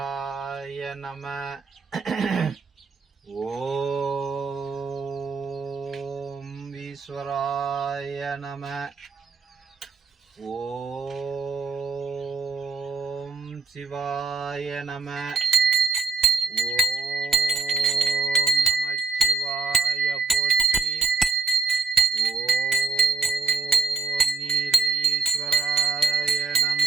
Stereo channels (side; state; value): left; quieter; 4.6 dB